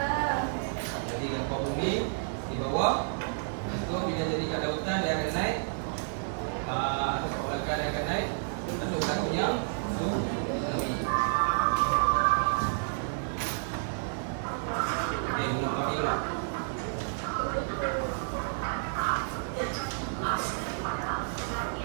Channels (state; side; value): silent; left; 58 dB below the other